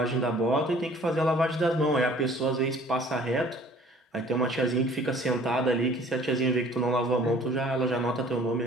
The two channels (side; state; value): both; normal; correlation 0.53